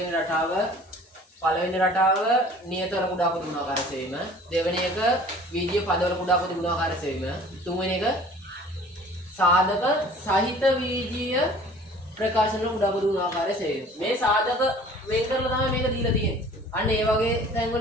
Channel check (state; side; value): normal; both; correlation 0.48